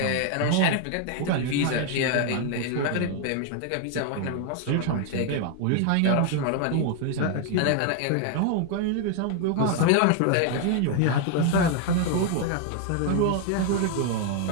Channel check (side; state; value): both; different; correlation 0.01